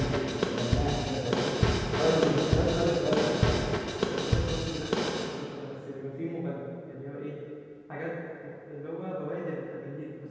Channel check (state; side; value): identical; both; correlation 1.00